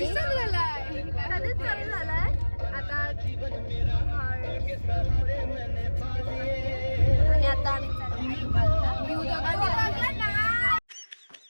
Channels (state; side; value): inverted; both; correlation -1.00